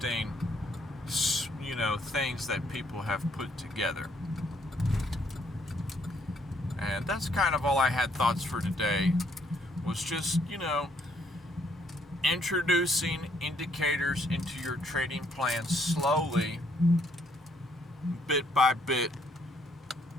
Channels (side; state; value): both; normal; correlation 0.68